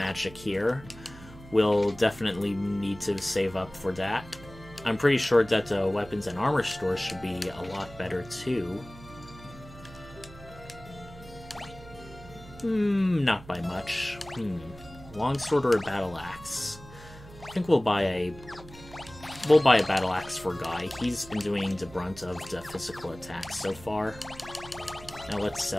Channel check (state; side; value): noise; right; hum, 18 dB below the sound